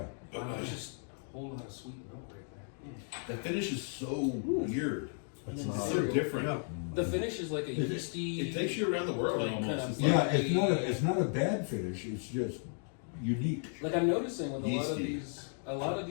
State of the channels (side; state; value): right; silent; 55 dB below the other